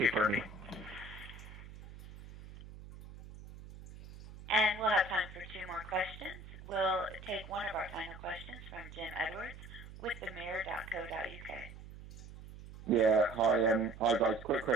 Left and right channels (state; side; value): noise; right; hum, 15 dB below the sound